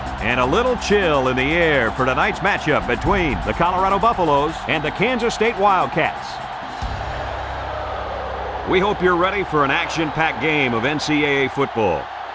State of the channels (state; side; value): identical; both; correlation 1.00